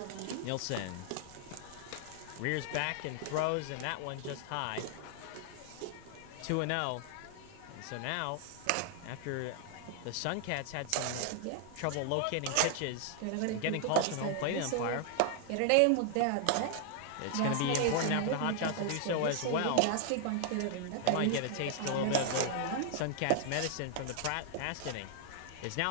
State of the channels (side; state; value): both; different; correlation 0.00